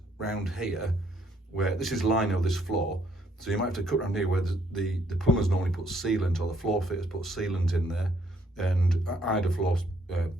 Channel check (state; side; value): normal; both; correlation 0.69